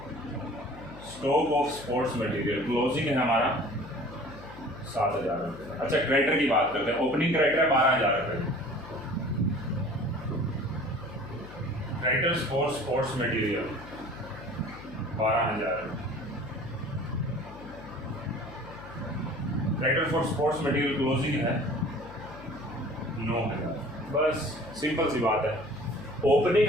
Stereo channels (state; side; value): noise; left; hum, 16 dB below the sound